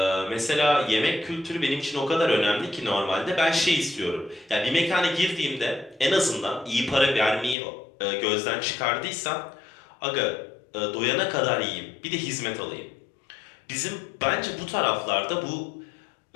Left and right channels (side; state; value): right; drops out; at 7.6 s